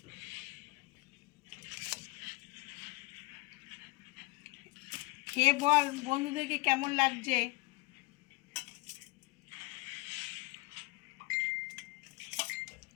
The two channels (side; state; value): right; quieter; 24.5 dB